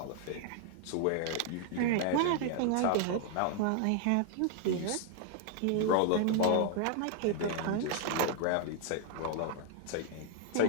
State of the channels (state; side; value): different; both; correlation 0.00